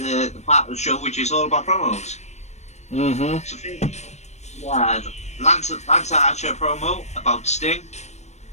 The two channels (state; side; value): late; right; 0.33 ms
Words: part of the show which is all about promos. Mm-hmm. So we had Lance Archer promo about Sting.